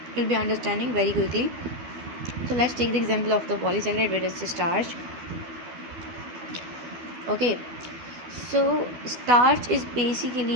will be understanding very quickly. So let's take the example of the polysaccharide, where it's starch. Okay, so starch is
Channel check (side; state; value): left; late; 12 ms